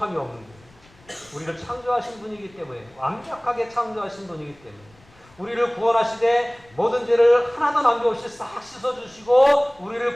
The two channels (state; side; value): noise; left; rumble, 28 dB below the sound